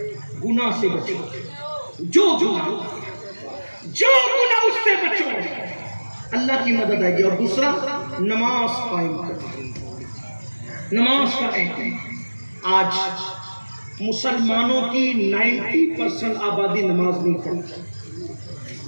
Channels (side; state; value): both; inverted; correlation -1.00